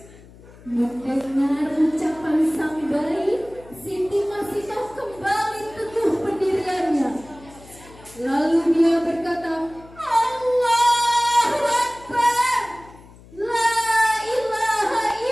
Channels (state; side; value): noise; left; hum, 22 dB below the sound